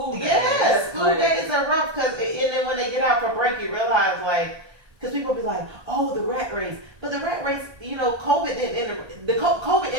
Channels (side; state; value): left; late; 1.3 ms